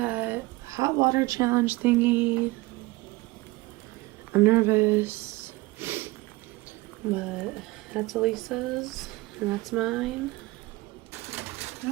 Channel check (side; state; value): left; quieter; 21.5 dB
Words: hot water challenge thingy. I'm nervous, but that's Elisa's and that's mine.